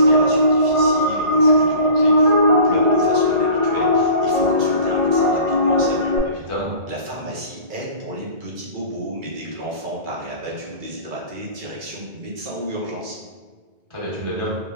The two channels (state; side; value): late; left; 2.3 ms